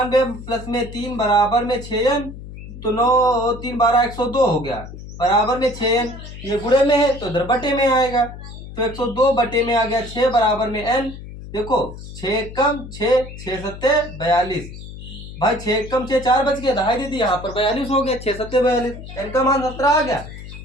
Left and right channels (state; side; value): noise; left; hum, 13 dB below the sound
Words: प्लस में 3 बराबर में 6n, तो 9 3 12 102 हो गया, बराबर में 6n। ये गुणे में है तो इधर बटे में आएगा, तो 102 बटे में आ गया 6 बराबर में n। देखो 6 कम 6, 6 सत्ते 42। भाई 6 कम 6 4 बच गया, दहाई दीदी यहाँ पर 42 हो गया। 6 सत्ते 42, n का मान 17 आ गया।